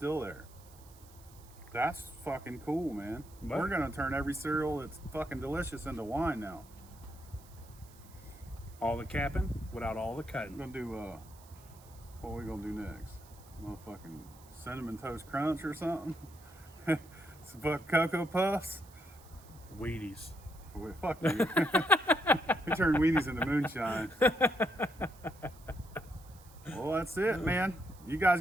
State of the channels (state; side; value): noise; right; hiss, 24 dB below the sound